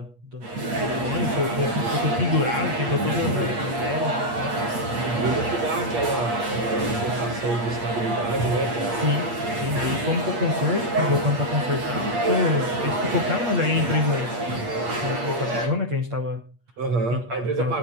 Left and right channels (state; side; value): late; left; 8.5 ms